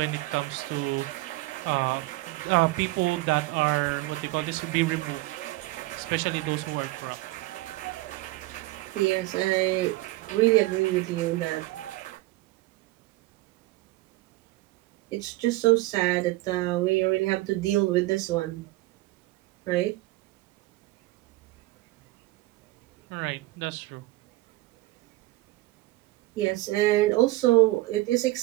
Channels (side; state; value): left; quieter; 19.4 dB